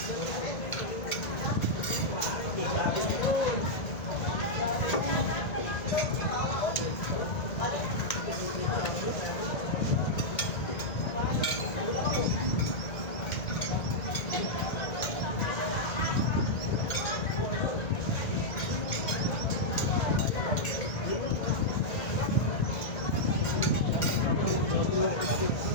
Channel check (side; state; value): right; late; 2.5 ms